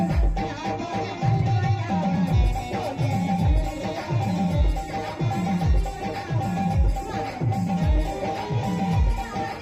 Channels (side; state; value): both; identical; correlation 1.00